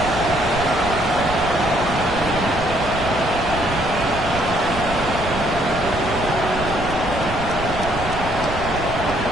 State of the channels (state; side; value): noise; right; rumble, 8 dB below the sound